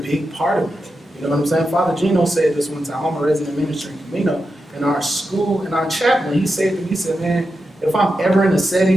part of it. You know what I'm saying? Father Gino said this one time. I'm a resident minister in Camino. In our school, in our chaplain, he said to me, he said, man, if I'm ever in a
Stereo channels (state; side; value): normal; both; correlation 0.89